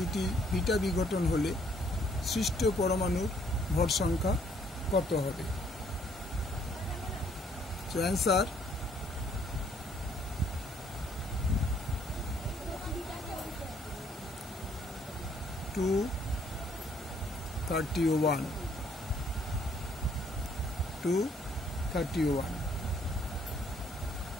বিটা বিঘটন হলে সৃষ্ট পরমাণুর ভর সংখ্যা কত হবে? So answer two 31।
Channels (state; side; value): normal; both; correlation 0.65